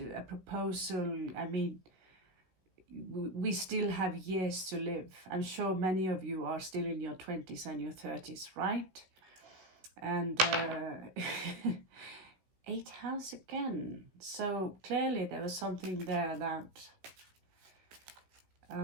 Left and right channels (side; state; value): left; late; 16 ms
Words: a proposal, I mean, we still have years to live. I'm sure many of you are still in your 20s and your 30s, right? And 8th house again. So clearly there was something there that